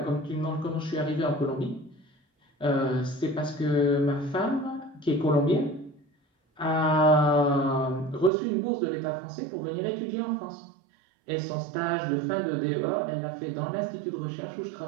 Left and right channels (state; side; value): drops out; left; at 8.3 s